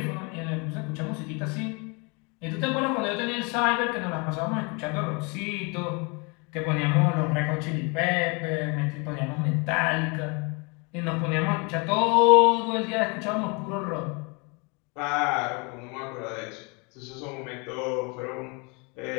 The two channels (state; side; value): quieter; right; 31.1 dB